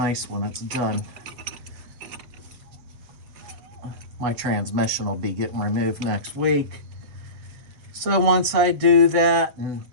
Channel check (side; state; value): left; late; 7.8 ms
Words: when it's done. My transmission will be getting removed next week. So once I do that and